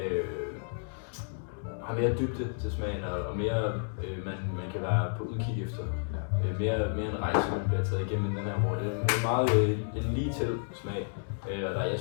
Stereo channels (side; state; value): right; silent; digital silence